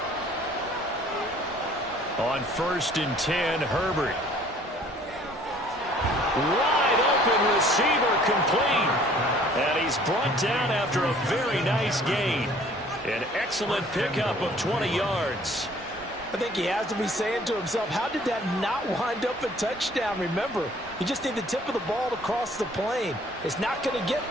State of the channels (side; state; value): both; normal; correlation 0.55